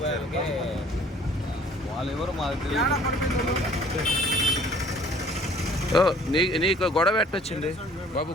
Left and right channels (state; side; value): normal; both; correlation 0.54